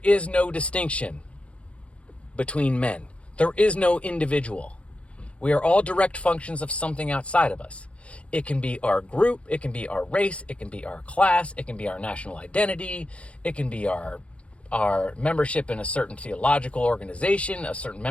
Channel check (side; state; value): right; late; 0.062 ms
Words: is no distinction between men. There is no individual. We are all direct functions of something outside of us. It can be our group, it can be our race, it can be our class, it can be our national identity, it can be our membership in a certain theological organization, a certain